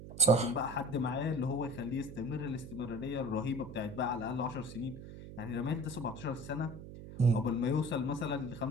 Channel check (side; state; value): right; noise; hum, 12 dB below the sound